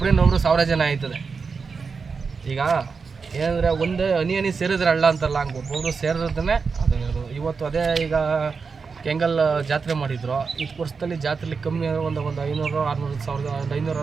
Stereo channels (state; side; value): quieter; left; 5.1 dB